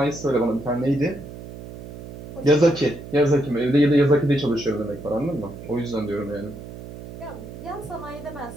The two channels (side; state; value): right; noise; hum, 13 dB below the sound